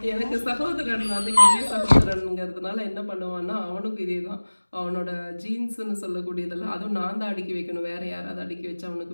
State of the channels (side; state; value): both; inverted; correlation -1.00